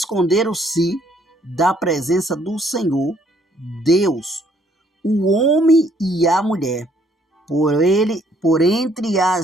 da presença do Senhor Deus, o homem e a mulher, por entre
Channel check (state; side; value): normal; both; correlation 0.65